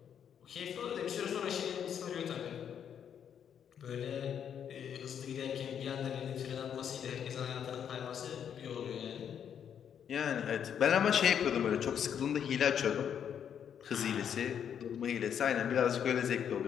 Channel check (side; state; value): right; quieter; 8.5 dB